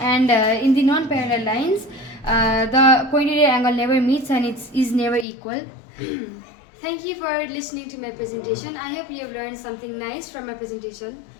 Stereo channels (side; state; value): right; drops out; at 5.2 s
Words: in the non-parallel lines, the cointerior angle never meets and it is never equal. Thank you for listening to my presentation. I hope you have learned something nice from my presentation.